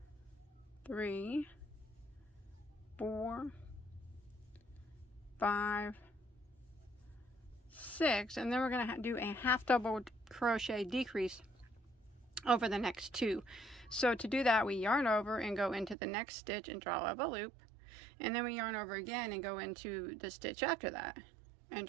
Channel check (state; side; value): drops out; left; at 16.0 s